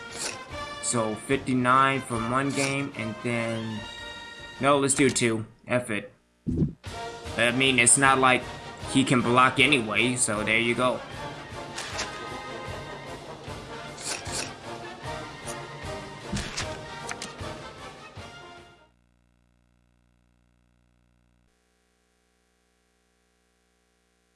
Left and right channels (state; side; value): identical; both; correlation 1.00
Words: So 59 from one game, and then no, let's do 2. F it. I mean, it's not like he can block anyway, so there you go.